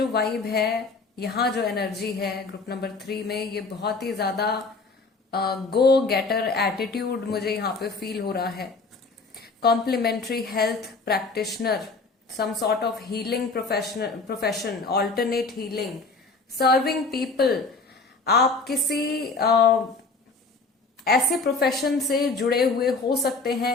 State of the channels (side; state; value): right; quieter; 3.9 dB